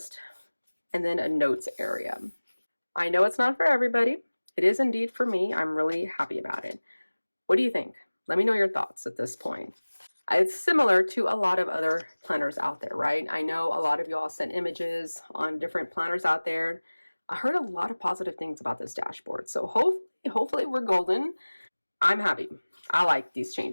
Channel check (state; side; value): inverted; both; correlation -1.00